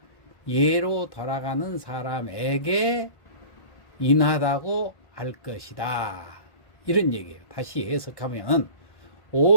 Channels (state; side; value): late; right; 1.5 ms